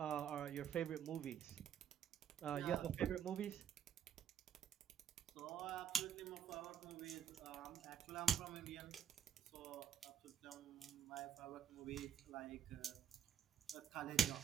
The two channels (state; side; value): quieter; left; 8.0 dB